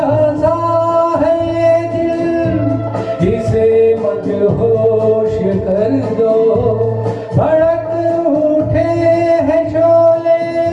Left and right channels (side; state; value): both; identical; correlation 1.00